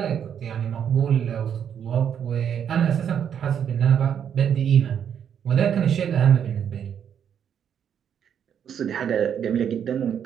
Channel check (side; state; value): left; quieter; 8.5 dB